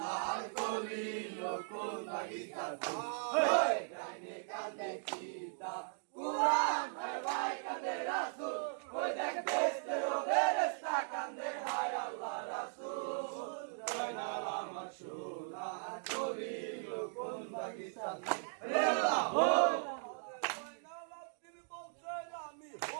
কলি কোন বাগিচার ফুল কান্দে কান্দে কিতাব কুরআন আর ভাই কান্দে রাসূল ওই দেখ বেস্তেরো বেরেস্তা কান্দে হায় আল্লাহ রাসূল জয়নাল আমার সোনার কলি কোন বাগিচার ফুল হে আল্লাহ হো আমি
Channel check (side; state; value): left; silent; digital silence